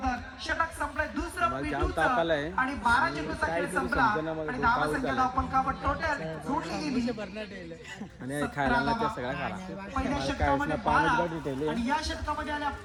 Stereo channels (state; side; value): identical; both; correlation 1.00